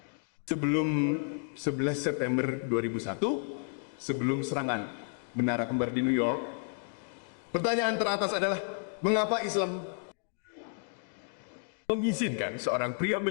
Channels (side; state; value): right; silent; 57 dB below the other